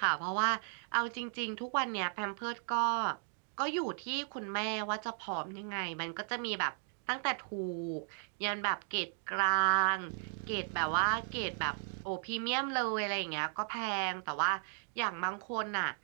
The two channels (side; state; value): left; silent; 54 dB below the other